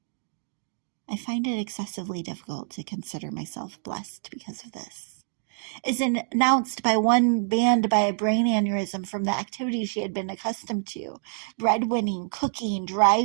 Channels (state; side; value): silent; left; digital silence